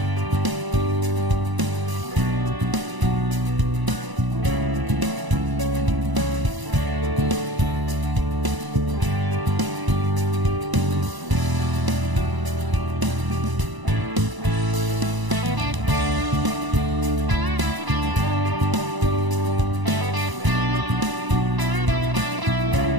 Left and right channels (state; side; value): late; left; 1.0 ms